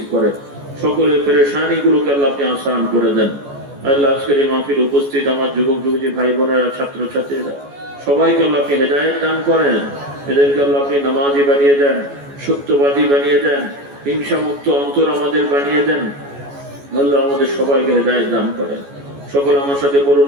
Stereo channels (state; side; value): late; left; 14 ms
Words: করে, সকলের পেরেশানি গুলোকে আল্লাহ আপনি আসান করে দেন। আল্লাহ আজকের এই মাহফিল উপস্থিত আমার যুবক যুবতী ভাই বোনেরা, ছাত্র ছাত্রীরা, সবাইকে আল্লাহ আপনি হেদায়েত দান করেন। এদেরকে আল্লাহ আপনি নামাজি বানিয়ে দেন, সত্যবাদী বানিয়ে দেন, হিংসা মুক্ত অন্তর আমাদের বানিয়ে দেন। আল্লাহ আমাদের সবাইকে হেদায়েত দান করেন। সকল আমার সাথে বলুন